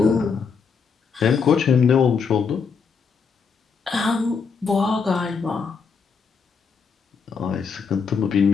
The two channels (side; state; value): right; quieter; 5.7 dB